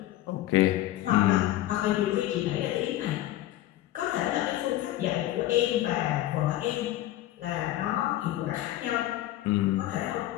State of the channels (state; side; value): quieter; right; 14.8 dB